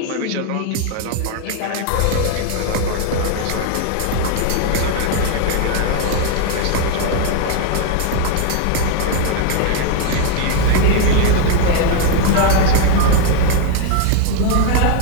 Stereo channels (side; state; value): both; different; correlation 0.01